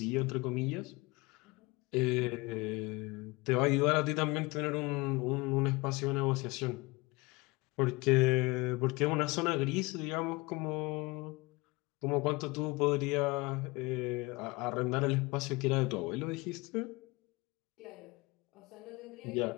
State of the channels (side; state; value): right; quieter; 24.4 dB